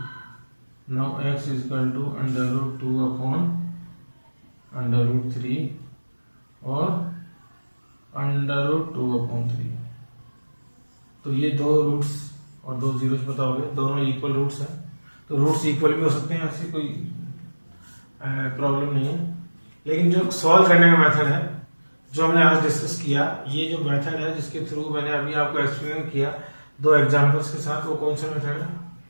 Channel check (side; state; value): both; inverted; correlation -1.00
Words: Now x is equal to √2/3। √3 और √2/3। तो ये दो roots और दो zeros पता हो गए, दोनों इक्वल रूट्स हैं। तो रूट्स इक्वल भी हो सकते हैं, ऐसी कोई प्रॉब्लम नहीं है। लेकिन जो सॉल्व करने का मेथड है जो हमने आज डिस्कस किया, ये जो मेथड है जिसके थ्रू मैंने अभी आपको एक्सप्लेन किया 2 एग्जांपल्स के साथ, वो कौन सा मेथड है?